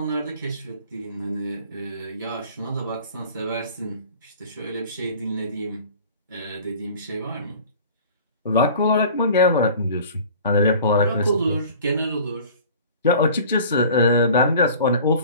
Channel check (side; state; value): both; inverted; correlation -0.45